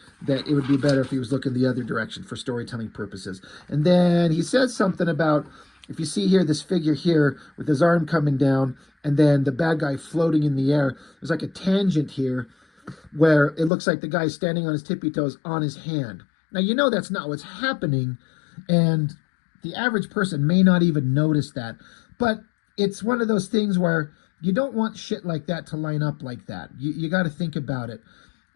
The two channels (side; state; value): right; drops out; at 13.7 s